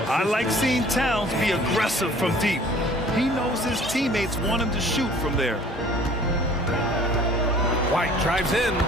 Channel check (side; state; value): both; normal; correlation 0.52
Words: I like seeing Towns be aggressive from deep. He knows his teammates want him to shoot from there. White drives in,